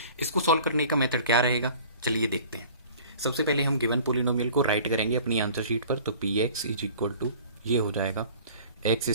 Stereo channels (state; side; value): inverted; both; correlation -0.46